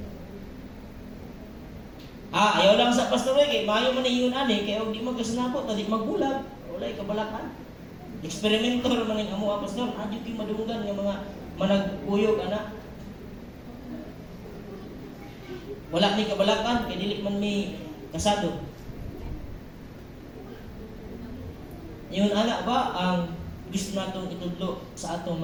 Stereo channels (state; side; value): identical; both; correlation 1.00